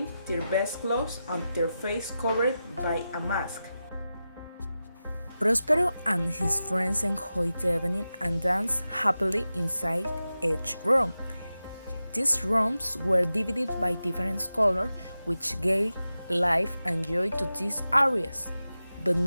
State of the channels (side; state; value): both; inverted; correlation -0.92